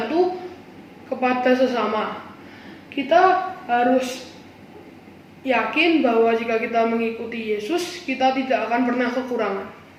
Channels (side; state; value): both; identical; correlation 1.00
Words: kepada sesama. Kita harus yakin bahwa jika kita mengikuti Yesus, kita tidak akan pernah kekurangan.